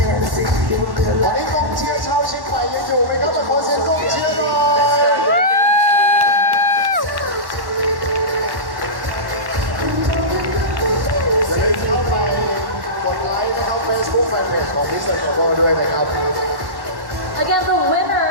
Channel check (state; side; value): late; left; 1.1 ms